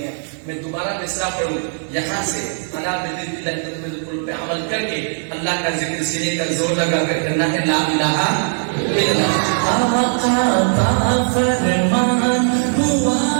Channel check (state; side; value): silent; left; digital silence